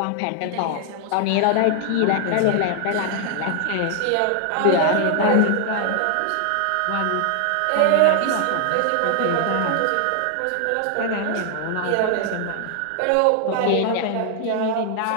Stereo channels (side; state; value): both; different; correlation 0.00